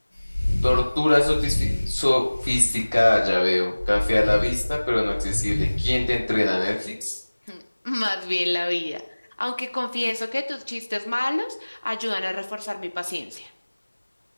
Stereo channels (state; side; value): inverted; both; correlation -1.00